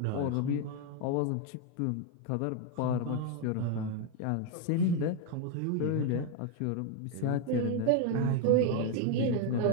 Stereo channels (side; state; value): both; different; correlation 0.01